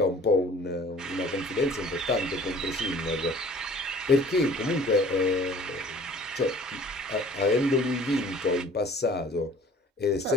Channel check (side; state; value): both; normal; correlation 0.50